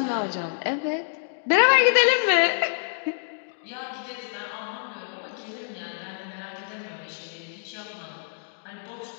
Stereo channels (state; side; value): silent; right; digital silence